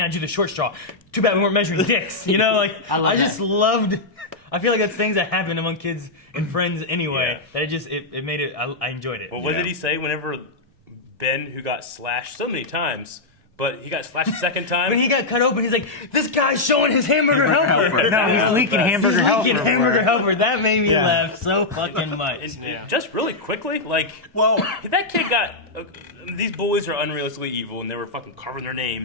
I do the short straw. Too bad we weren't measuring dicks. You know, like I just loved. I feel like that's things that happen among kids and friends anyway. Yeah. That it made it. I enjoyed it. Well, what did he say whenever Ben, who got slashed so many times But he got slashed a second time. When he got cut open, he's like, "This guy's showing his hamburger helper." No, he's leaking hamburger helper. He's leaking hamburger everywhere. helper. That made me laugh so fucking much. And just really quickly, like, Well, that kid got. These bullies are unrealistically evil, and they were fucking carving their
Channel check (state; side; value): quieter; right; 3.2 dB